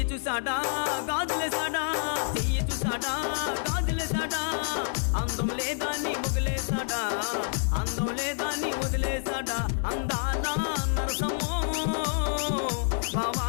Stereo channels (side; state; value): right; silent; 59 dB below the other